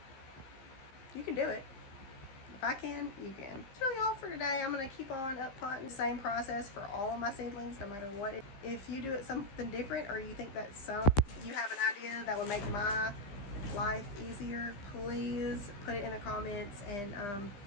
you can do it. If I can, you can. That's really all for today. I'm going to keep on uppotting the same process for all of my seedlings, no matter what. If you do it something different, or you think that you have an idea that would make my life easier, please put it in the comments and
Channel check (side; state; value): right; late; 15 ms